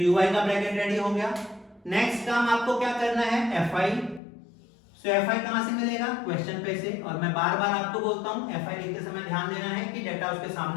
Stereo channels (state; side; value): drops out; right; at 4.2 s